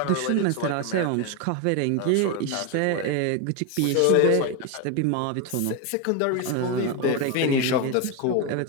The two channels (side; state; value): both; different; correlation 0.02